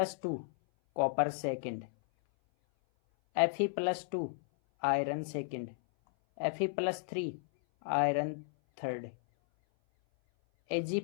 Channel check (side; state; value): right; silent; 55 dB below the other